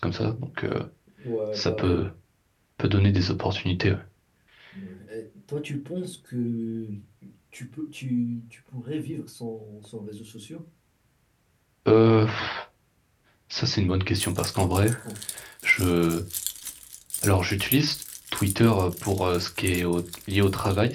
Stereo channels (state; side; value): identical; both; correlation 1.00